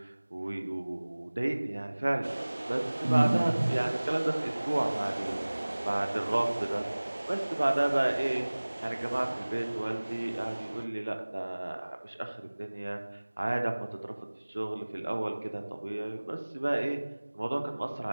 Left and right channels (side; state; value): both; inverted; correlation -1.00